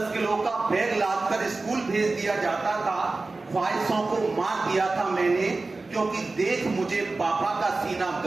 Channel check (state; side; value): quieter; left; 3.5 dB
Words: किलो का बैग लादकर स्कूल भेज दिया जाता था। ख्वाहिशों को मार दिया था मैंने, क्योंकि देख मुझे पापा का सीना